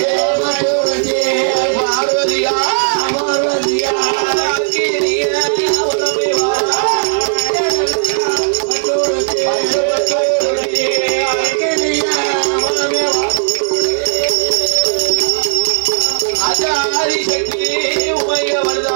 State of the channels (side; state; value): left; silent; digital silence